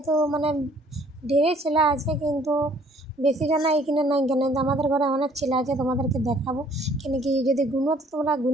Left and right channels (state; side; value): normal; both; correlation 0.59